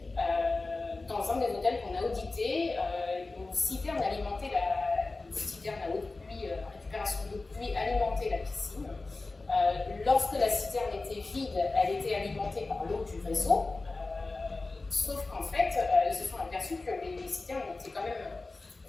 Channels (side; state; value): right; quieter; 3.4 dB